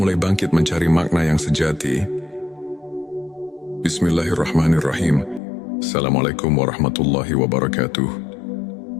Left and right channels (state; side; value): drops out; right; at 5.4 s